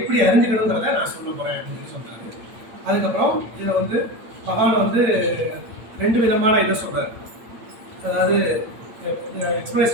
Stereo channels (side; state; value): left; late; 8.8 ms